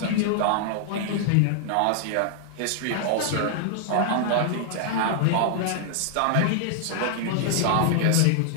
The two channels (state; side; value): different; both; correlation 0.00